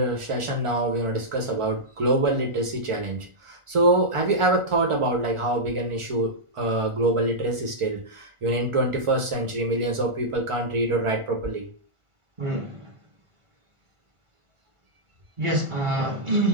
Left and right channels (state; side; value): late; left; 1.4 ms